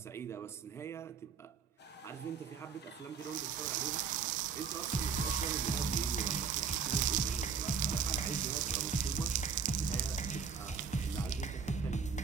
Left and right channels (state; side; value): quieter; left; 6.2 dB